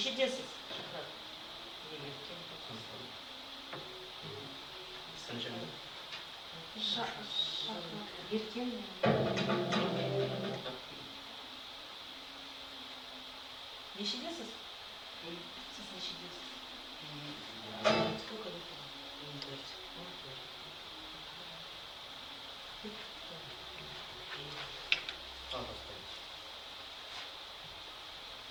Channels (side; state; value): both; identical; correlation 1.00